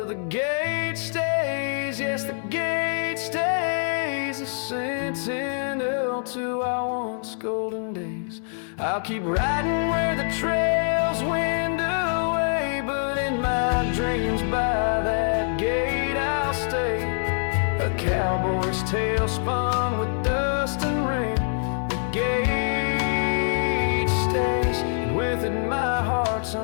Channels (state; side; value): silent; right; digital silence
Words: the gate stays, yes, the gate stays, a sentinel to our once golden days. I'll keep riding where the trails wind away, but in my dreams by that gate I'll stay. A cowboy's tale spun with dust and rain. The gate stays, and with it my heart's